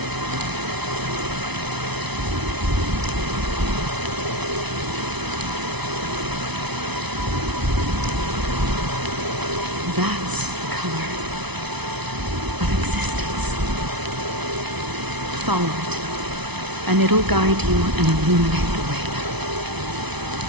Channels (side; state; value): left; late; 0.99 ms